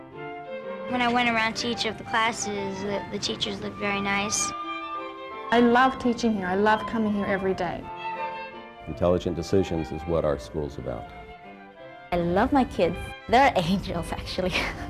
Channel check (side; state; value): both; identical; correlation 1.00